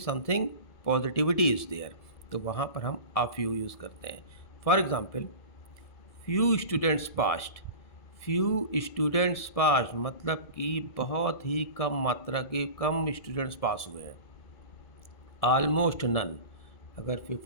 something positivity is there, तो वहाँ पर हम अ फ्यू यूज़ करते हैं। For example, few students passed. Few students passed मतलब कि बहुत ही कम मात्रा के कम स्टूडेंट्स पास हुए हैं। ऑलमोस्ट नन, अगर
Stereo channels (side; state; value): right; late; 1.7 ms